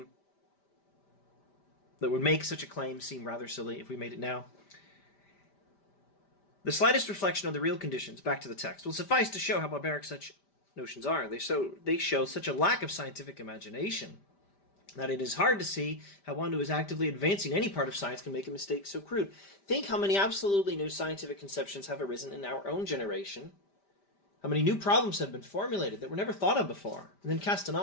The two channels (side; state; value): right; late; 5.1 ms